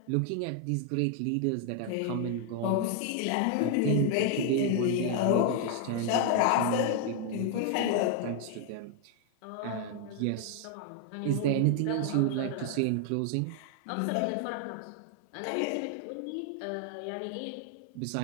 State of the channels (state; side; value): different; both; correlation 0.00